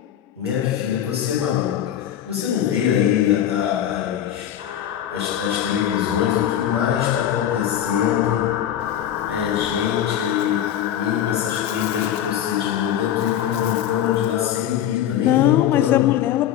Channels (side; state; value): right; quieter; 10.7 dB